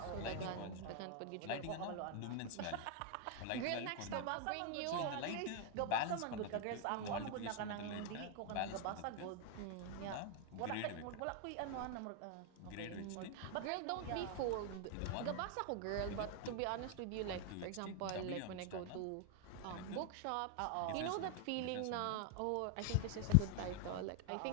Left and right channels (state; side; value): different; both; correlation 0.00